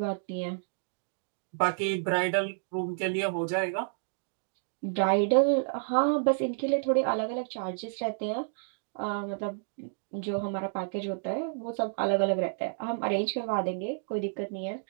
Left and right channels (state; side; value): silent; left; digital silence